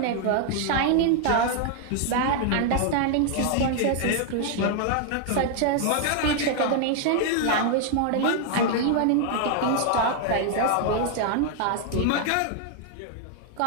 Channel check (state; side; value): different; both; correlation 0.00